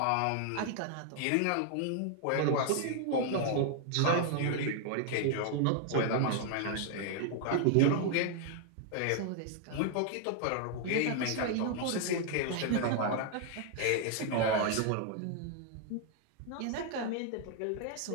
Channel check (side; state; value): both; different; correlation 0.00